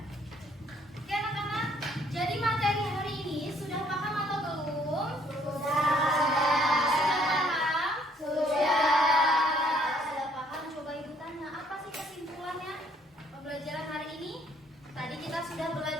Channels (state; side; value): normal; both; correlation 0.64